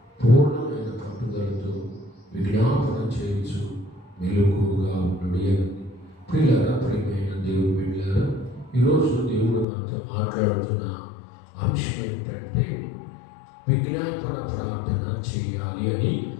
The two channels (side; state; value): right; drops out; at 9.7 s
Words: పూర్ణమైన పట్టుదలతో విజ్ఞాపన చేయుచు మెలకువగా ఉండుడి అని. ప్రియులారా, ప్రియమైన దేవుని బిడ్డలారా, ఈరోజు దేవుడు మనతో మాట్లాడుతున్న అంశం ఏంటంటే విజ్ఞాపన ప్రార్థన చేయాలి అని